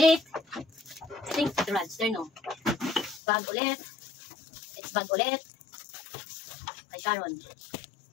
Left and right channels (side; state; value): right; drops out; at 3.2 s